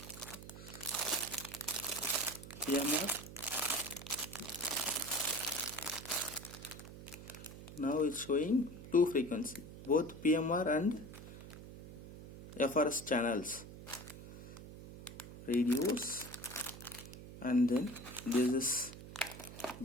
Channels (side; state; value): right; noise; hum, 14 dB below the sound